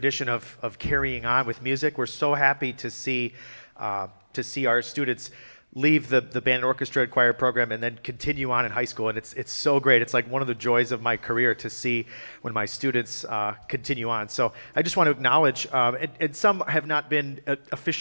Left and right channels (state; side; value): inverted; both; correlation -1.00